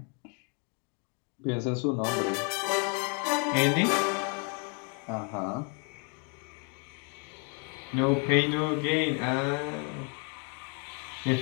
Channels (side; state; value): right; quieter; 38.0 dB